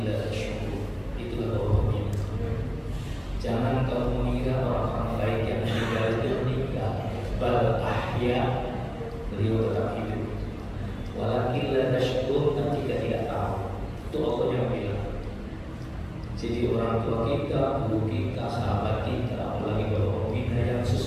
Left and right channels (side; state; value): both; identical; correlation 1.00